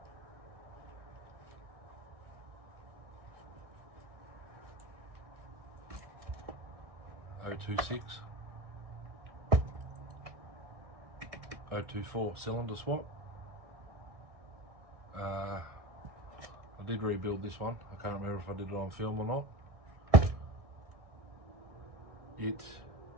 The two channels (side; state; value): left; late; 1.6 ms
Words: .026, 024 cylinder swap. I did rebuild this one. I can't remember if I did it on film or not. It